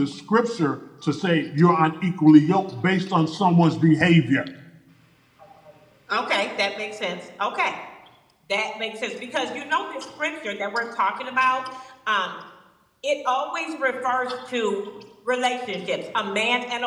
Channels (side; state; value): both; identical; correlation 1.00